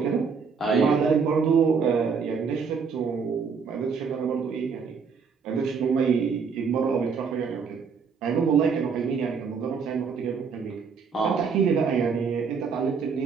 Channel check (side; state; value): left; quieter; 5.7 dB